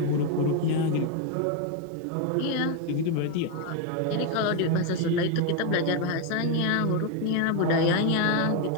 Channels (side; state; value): both; different; correlation 0.02